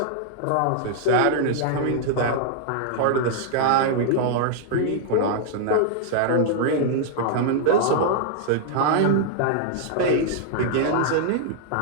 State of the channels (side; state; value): both; different; correlation -0.01